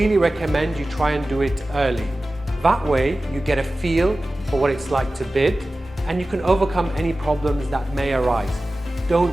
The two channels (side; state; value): both; normal; correlation 0.96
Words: recommend you try and do it early. That way you get a feel for what it's like to bid and you can overcome any problems that may arise.